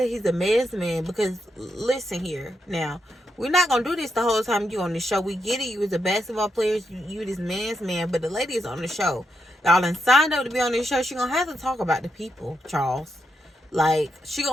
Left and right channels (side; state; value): both; normal; correlation 0.83